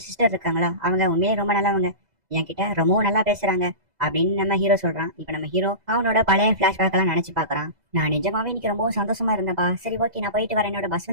சிஸ்டர் இருக்காங்களா, அவங்க உண்மையே ரொம்ப நல்லவங்க, என்கிட்ட ரொம்பவும் நல்லா பேசுறாங்க அப்படின்னு நம்ம ஹீரோ சொல்றான். இப்ப நம்ம ஹீரோ அவனோட பழைய பிளாஷ்பேக் எல்லாம் நினைச்சு பாக்குறான். நான் நிஜமாவே இன்னைக்கு ரொம்பவும் சந்தோஷமா இருந்தேன்ப்பா. சரி ஓகே நான் போயிட்டு வரேன், என்னோட பஸ்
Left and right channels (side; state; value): left; late; 2.0 ms